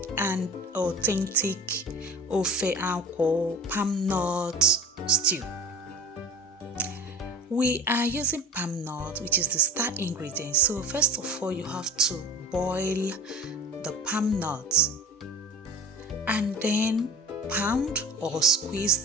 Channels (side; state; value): both; normal; correlation 0.37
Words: and authentic Ofe Akwu palm nut stew. We are using palm nut, which is the star ingredient. So first of all, you have to boil the palm nuts and then pound or